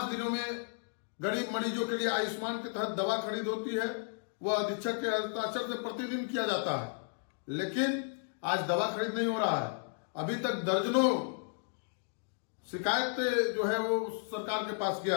दिनों में गरीब मरीजों के लिए आयुष्मान के तहत दवा खरीद होती है, वह अधीक्षक के हस्ताक्षर से प्रतिदिन किया जाता है, लेकिन आज दवा खरीद नहीं हो रहा है। अभी तक दर्जनों शिकायतें जो है वो सरकार के पास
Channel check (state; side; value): silent; right; 55 dB below the other